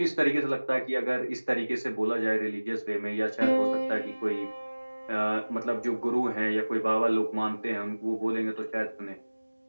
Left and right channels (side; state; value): both; inverted; correlation -1.00